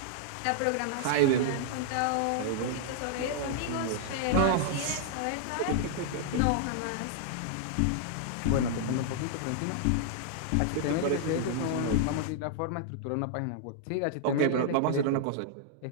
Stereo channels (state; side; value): different; both; correlation -0.01